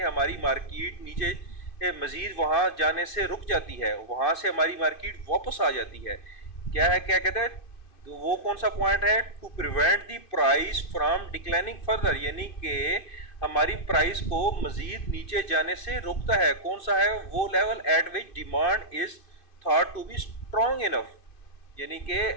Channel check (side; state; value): right; late; 2.5 ms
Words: मार्केट नीचे मजीद वहां जाने से रुक जाती है, वहां से हमारी मार्केट वापस आ जाती है। क्या है, क्या कहते हैं, तो वो कौन सा पॉइंट है? To prevent the price from declining further, यानी कि हमारी प्राइस को मजीद नीचे जाने से रोकता है। कौन सा है वो level? At which demand is thought to be strong enough, यानी कि